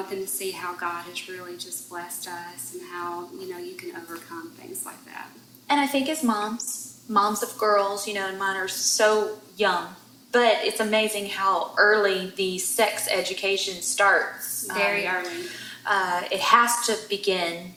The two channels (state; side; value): identical; both; correlation 1.00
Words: them to see how God has really just blessed us and how, you can overcome things like that. And I think as moms of girls, and mine are so young, but it's amazing how early the sex education starts. Very early. It has to begin